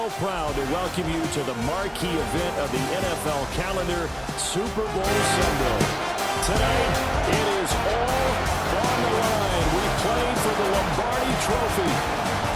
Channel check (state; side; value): identical; both; correlation 1.00